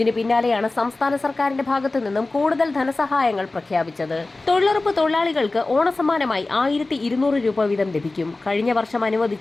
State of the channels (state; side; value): quieter; right; 3.2 dB